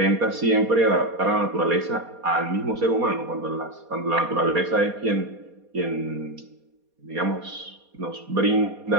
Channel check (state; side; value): late; left; 4.2 ms